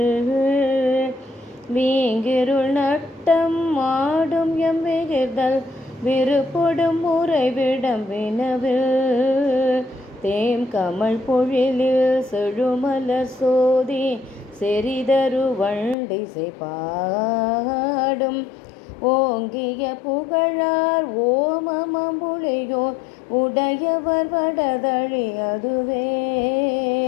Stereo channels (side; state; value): right; drops out; at 16.0 s